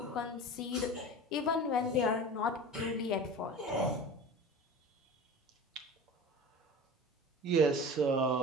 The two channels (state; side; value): normal; both; correlation 0.35